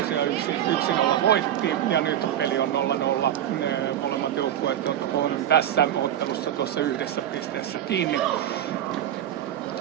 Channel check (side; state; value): left; quieter; 11.1 dB